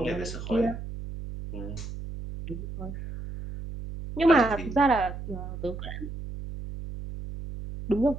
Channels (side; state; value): right; noise; hum, 9 dB below the sound